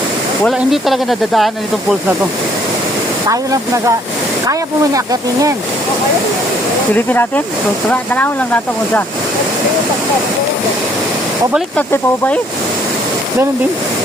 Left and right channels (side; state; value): both; normal; correlation 0.63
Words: Wala, hindi talaga nadadaanan itong pulse na to. Tayo lang kaya po may akitin yan. Silipin natin. So, tanawin lang natin kung sa. O balik natin pa ba eh? Ganun din.